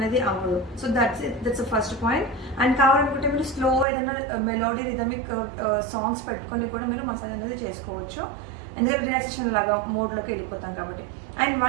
అవ్వదు. So that's first point. And కావాలనుకుంటే మీరు స్లో ఏదైనా మెలోడీ రిథమిక్ సాంగ్స్ పెట్టుకొని కూడా మీరు మసాజ్ అనేది చేసుకోవచ్చు, ఎందుకంటే రిలాక్సేషన్ లాగా మోడ్లోకి వెళ్ళిపోతాం కాబట్టి. అండ్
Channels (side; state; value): left; drops out; at 3.9 s